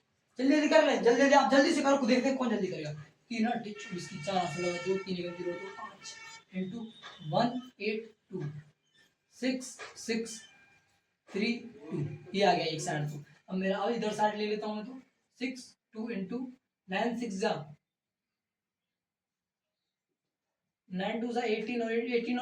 जल्दी जल्दी कर ले, जल्दी जल्दी आप जल्दी से करो, देखते हैं कौन जल्दी करेगा। 3 8 24 की 4 16 2 3 1 0 2 5 इंटू 182 6 6 3 2, ये आ गया एक साइड। तो अब मेरा अब इधर साइड ले लेता हूं मैं, तो 6 2 इंटू 9 6 जा 9 2 18 और 18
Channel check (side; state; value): both; identical; correlation 1.00